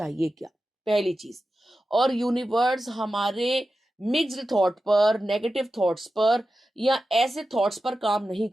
क्या, पहली चीज़। और यूनिवर्स हमारे मिक्स्ड थॉट पर, नेगेटिव थॉट्स पर या ऐसे थॉट्स पर काम नहीं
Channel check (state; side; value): normal; both; correlation 0.92